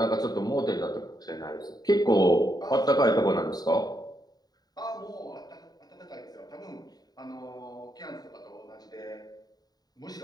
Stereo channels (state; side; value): late; right; 0.19 ms